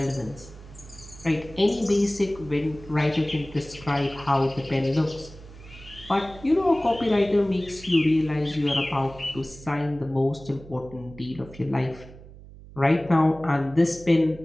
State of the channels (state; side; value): noise; right; hum, 18 dB below the sound